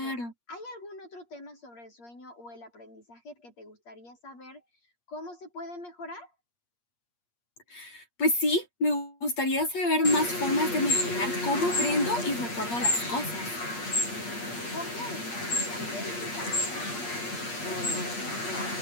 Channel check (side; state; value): right; late; 8.5 ms